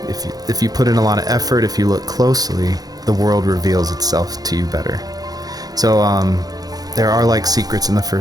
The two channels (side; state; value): left; late; 0.19 ms